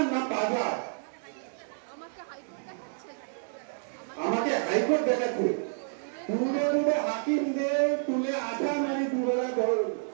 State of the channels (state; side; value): silent; left; digital silence